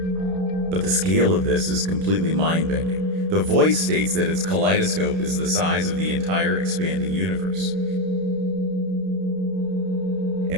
But the scale of this is completely mind-bending. The voice states that its kaleidoscope is the size of the entire expanding universe.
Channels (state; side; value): late; left; 31 ms